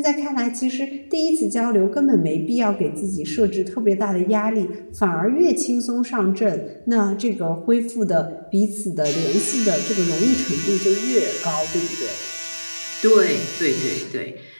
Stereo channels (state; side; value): inverted; both; correlation -1.00